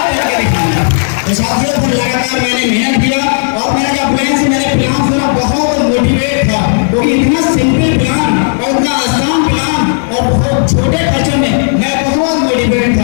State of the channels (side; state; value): right; silent; digital silence